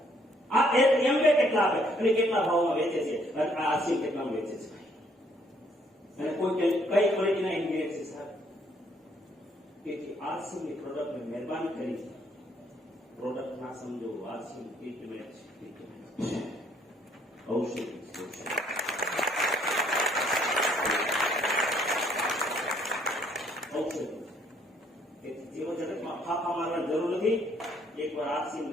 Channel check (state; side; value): normal; both; correlation 0.66